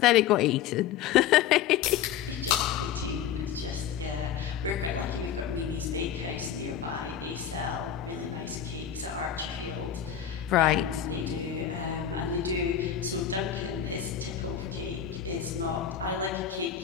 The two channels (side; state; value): right; quieter; 9.3 dB